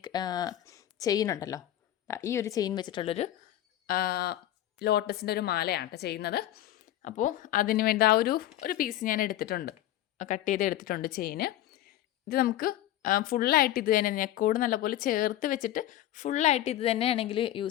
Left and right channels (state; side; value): quieter; right; 13.2 dB